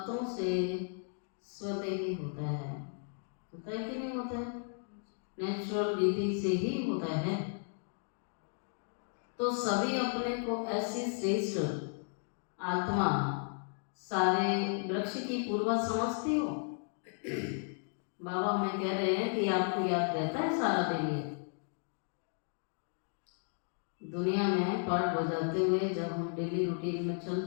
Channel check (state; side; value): silent; right; 55 dB below the other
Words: से स्वतः ही होता है। होता है कि नहीं होता है? नेचुरल विधि से ही होता है। तो सभी अपने को ऐसी श्रेष्ठ आत्मा, सारे वृक्ष की पूर्वज समझती हो। बाबा हमें कह रहे हैं कि आपको याद रहता है सारा दिन ये दुनिया में पाठ बजाते हुए जब हम डेली रूटीन में